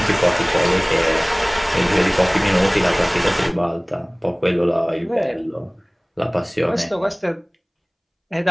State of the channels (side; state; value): both; identical; correlation 1.00